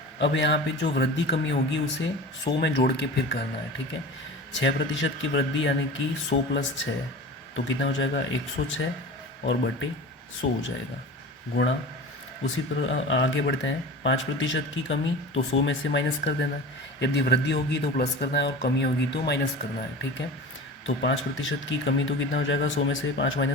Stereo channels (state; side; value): normal; both; correlation 0.34